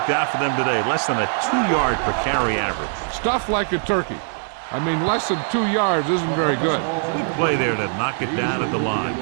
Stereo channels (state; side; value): silent; left; digital silence